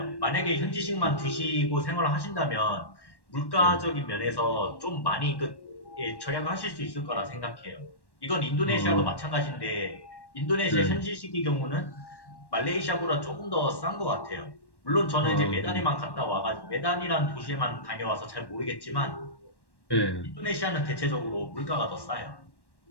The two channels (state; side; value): late; right; 1.1 ms